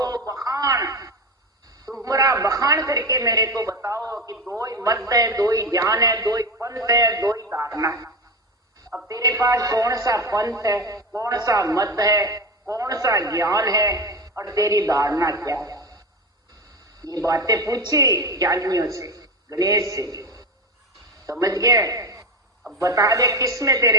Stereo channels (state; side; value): normal; both; correlation 0.22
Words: बखान, तुम्हारा बखान करके मेरे को बताओ कि दो ही मत है, दो ही ज्ञान है, दो ही पंथ है, दो ही धारणा है। अब तेरे पास कौन सा पंथ है, कौन सा मत है, कौन सा ज्ञान है और तेरी धारणा क्या है? ये बातें पूछी ज्ञानियों से, गणेश से, समझ गए? अब बता दे किस में